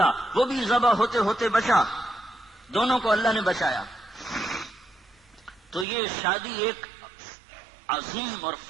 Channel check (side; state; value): left; drops out; at 5.9 s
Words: وہ بھی ذبح ہوتے ہوتے بچا، دونوں کو اللہ نے بچایا۔ تو یہ شادی ایک عظیم اور